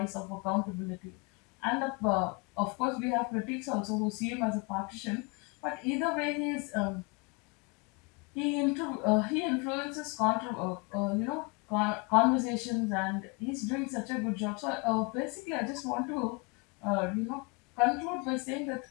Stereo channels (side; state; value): right; quieter; 29.4 dB